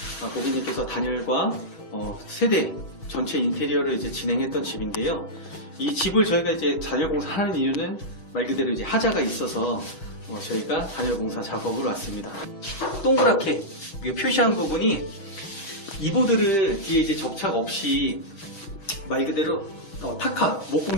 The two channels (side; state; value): right; late; 6.3 ms